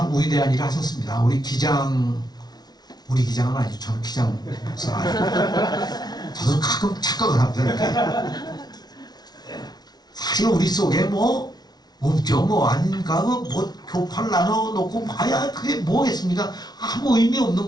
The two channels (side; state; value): right; late; 0.19 ms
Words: 위대한 일을 하셨습니다. 우리 기장은 아니죠. 저는 기장 목사가 아니고 저도 가끔 착각을 합니다. 이렇게. 사실 우리 속에 뭐 없죠. 뭐 아닌가 뭐 교파를 나눠놓고 봐야 그게 뭐겠습니까? 아무 의미 없는